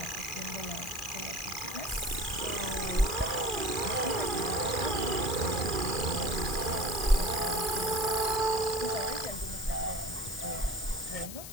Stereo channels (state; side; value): noise; left; hiss, 10 dB below the sound